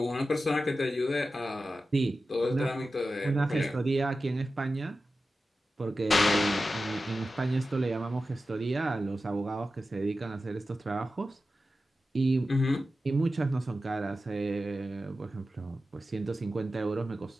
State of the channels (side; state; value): both; normal; correlation 0.93